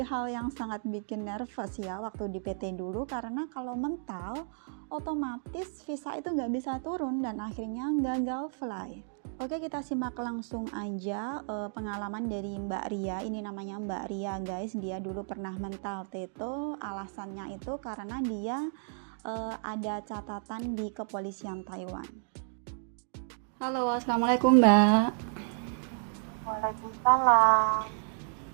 hal yang sangat bikin nervous ya waktu di PT dulu, karena kalau mental otomatis visa itu nggak bisa turun dan akhirnya gagal fly. Oke, kita simak langsung aja pengalaman dari Mbak Ria. Ini namanya Mbak Ria guys, dia dulu pernah mental teto. Alasannya itu karena dia ada catatan di kepolisian Taiwan. Halo, assalamualaikum Mbak. Waalaikumsalam.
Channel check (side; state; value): left; silent; digital silence